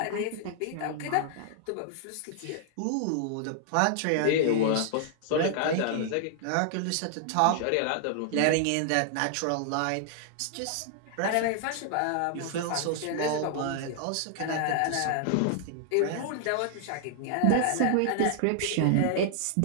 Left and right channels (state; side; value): different; both; correlation 0.00